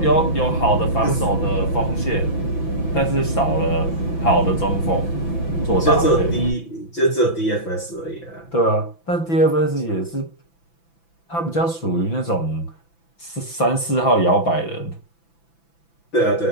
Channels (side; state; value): right; late; 6.0 ms